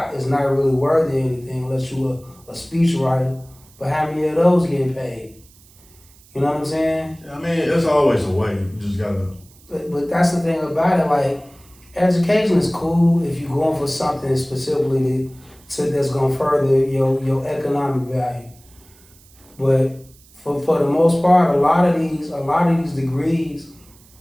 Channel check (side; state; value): right; noise; hiss, 27 dB below the sound